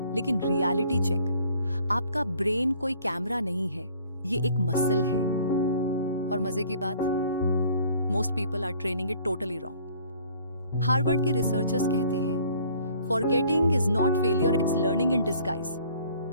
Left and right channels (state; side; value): inverted; both; correlation -0.56